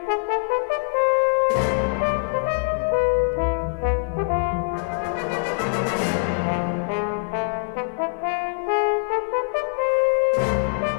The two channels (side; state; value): right; silent; 63 dB below the other